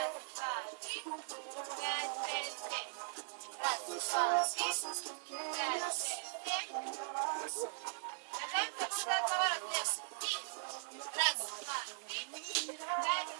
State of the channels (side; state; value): left; silent; 51 dB below the other